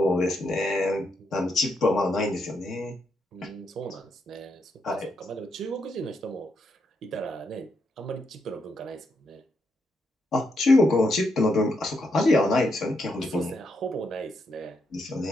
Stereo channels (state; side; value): normal; both; correlation 0.80